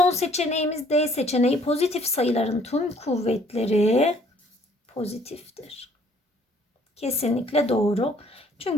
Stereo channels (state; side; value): normal; both; correlation 0.60